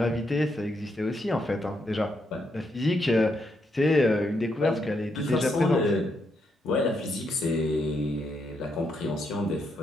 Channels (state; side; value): normal; both; correlation 0.79